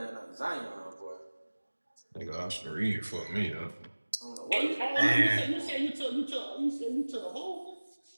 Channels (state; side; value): inverted; both; correlation -1.00